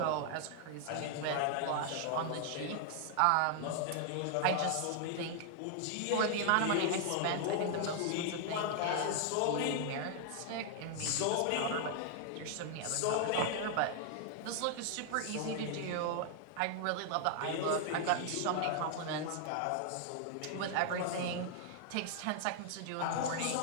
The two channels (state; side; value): different; both; correlation 0.00